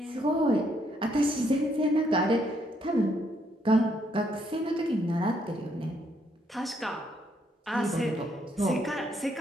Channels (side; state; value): both; normal; correlation 0.72